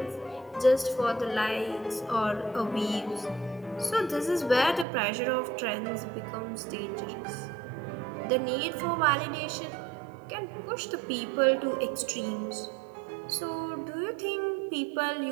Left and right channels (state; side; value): drops out; left; at 4.9 s